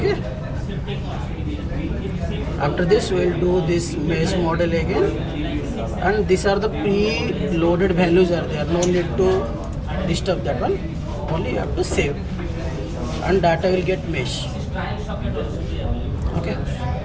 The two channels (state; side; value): identical; both; correlation 1.00